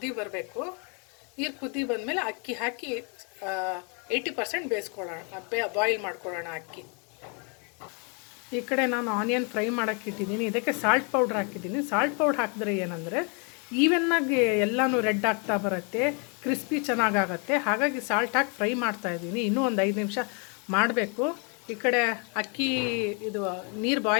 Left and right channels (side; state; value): right; quieter; 36.0 dB